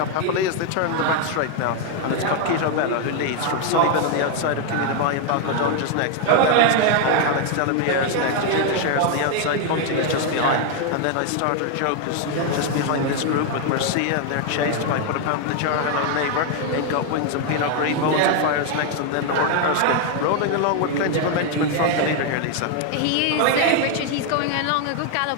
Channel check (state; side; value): different; both; correlation 0.01